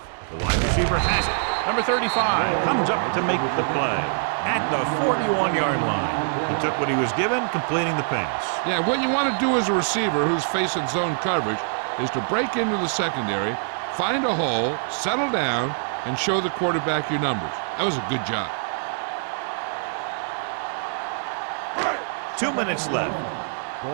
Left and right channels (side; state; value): left; silent; digital silence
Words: the wide receiver has it. Number 35 comes up to make the play at the 41-yard line. He took what he was given, completing the pass. Yeah, what you want to do as a receiver who's facing zone coverage is to break into the secondary, find a hole, settle down, and show the quarterback your numbers. That was a good job. 2 minutes left.